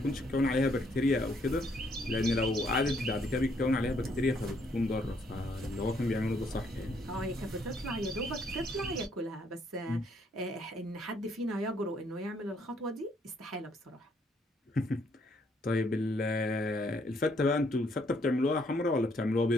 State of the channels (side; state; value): both; normal; correlation 0.69